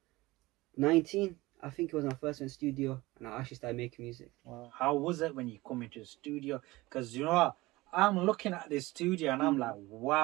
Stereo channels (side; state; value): left; quieter; 20.1 dB